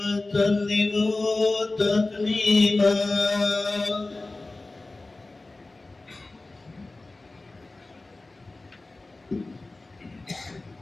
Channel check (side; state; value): right; quieter; 3.1 dB